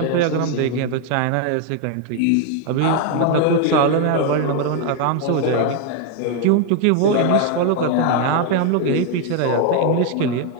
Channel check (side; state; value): both; different; correlation 0.01